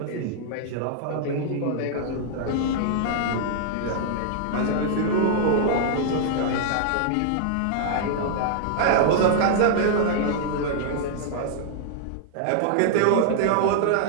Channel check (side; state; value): both; different; correlation -0.01